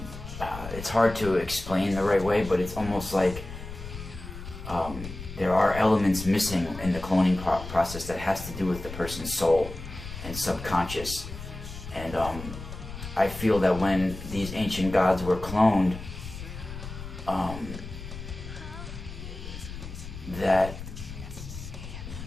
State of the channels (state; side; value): noise; left; rumble, 11 dB below the sound